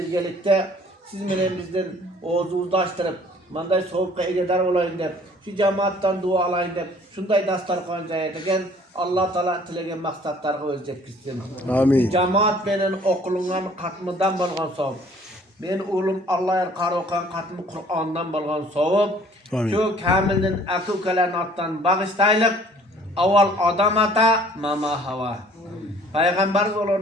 siz menen bizden oğuzumuzni açtırıp manday sovuqqa egedar olayın deb şu cemaattan dua alayın deb şunday dastarxon jayadigan Allah Teala tilegen maqsadlarga o'z yetkizsin. Amin. Cemaat menen oqilgan qatmıdan bolgan savob. Men o'g'lim Alloh qaroqan qatmi Qur'ondan bolgan savob. Amin. Şu kamilning aka-ukalarning otdan bag'ishtaylik. Avval odam ata, mama hava. Peygamberimiz olur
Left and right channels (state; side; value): normal; both; correlation 0.55